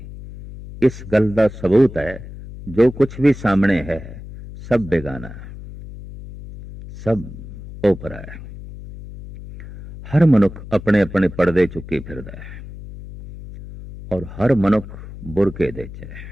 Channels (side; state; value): left; noise; hum, 13 dB below the sound